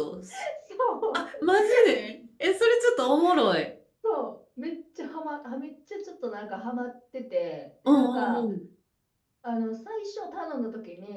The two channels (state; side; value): identical; both; correlation 1.00